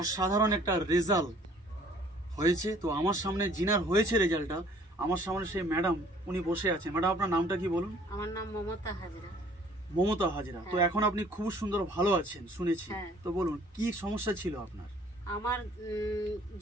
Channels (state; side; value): normal; both; correlation 0.56